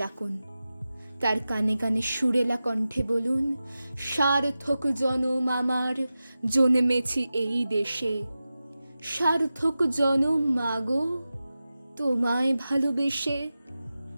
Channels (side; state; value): both; inverted; correlation -0.94